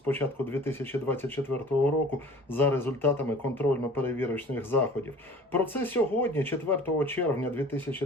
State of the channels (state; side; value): normal; both; correlation 0.45